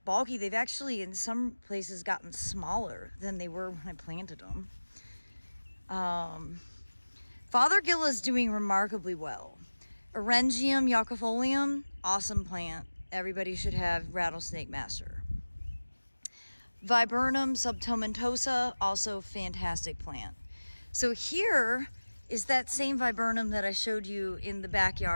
bulky. They've actually in some places gotten smaller than they were when I planted them. Fothergill is doing remarkably well. Orangium yuccifolium, awesome plant. Everybody should have Rattlesnake Master. Viburnum subtomentosa, also fantastic plant. So here is that same viburnum that I showed you in the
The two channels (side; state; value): both; inverted; correlation -1.00